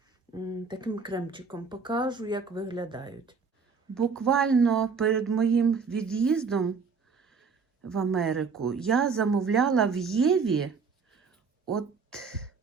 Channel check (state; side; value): quieter; left; 5.2 dB